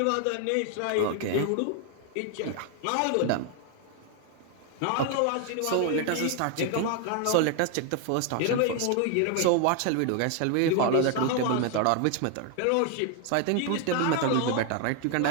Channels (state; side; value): different; both; correlation 0.01